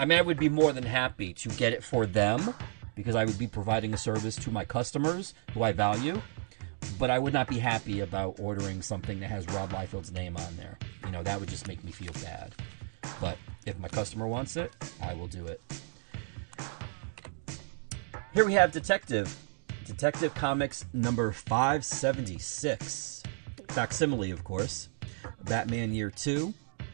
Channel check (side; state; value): left; silent; 56 dB below the other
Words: mean, I would be more than happy to get it for them because I would be providing a service to my customers who I value. But I would not be happy about ordering something that has Rob Liefeld's name on there. You know, that would just make me feel bad. But if my customer wants it, I will do it. Here we have Detective Comics number 576. Facsimile, of course. Batman Year 2.